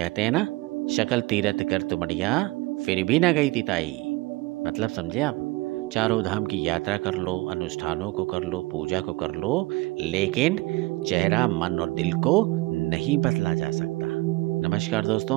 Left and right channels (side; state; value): left; quieter; 21.8 dB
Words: हैं ना, शकल तीरथ कर तुमड़िया फिर भी ना गई तिताई। मतलब समझे आप, चारों धाम की यात्रा कर लो, अनुष्ठानों को कर लो, पूजा को कर लो, लेकिन चेहरा, मन और दिल को नहीं बदला जा सकता। नमस्कार